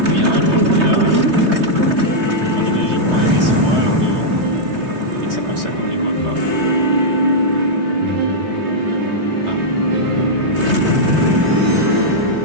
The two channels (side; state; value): left; late; 3.2 ms